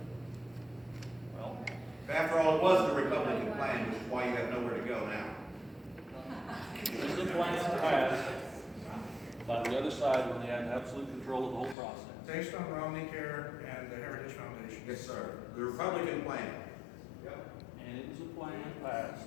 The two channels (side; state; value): right; drops out; at 11.8 s